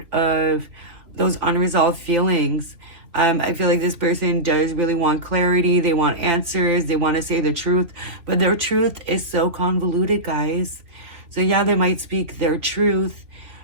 of those unresolved feelings. I feel like this person does really want clarity. They want answers. They want to say the truth, but their truth is so convoluted, guys. So yeah, they might speak their truth,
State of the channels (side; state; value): left; late; 3.0 ms